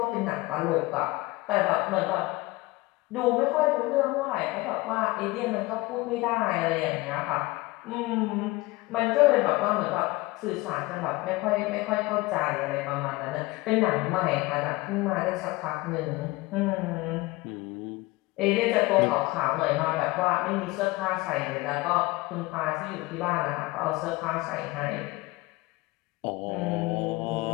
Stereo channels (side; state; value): right; quieter; 21.5 dB